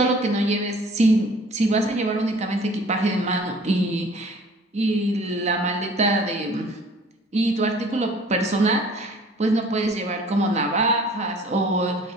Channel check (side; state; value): both; normal; correlation 0.51